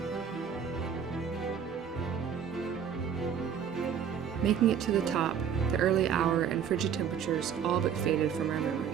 Making it to the top, the early hour and frigid temperatures all but faded from our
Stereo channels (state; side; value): quieter; left; 7.7 dB